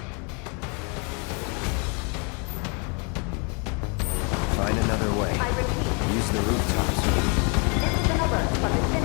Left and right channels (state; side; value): quieter; right; 34.4 dB